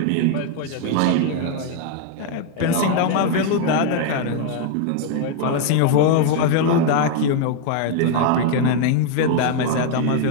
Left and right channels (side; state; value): both; different; correlation 0.01